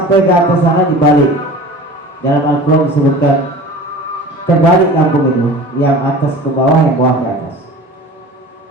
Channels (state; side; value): normal; both; correlation 0.39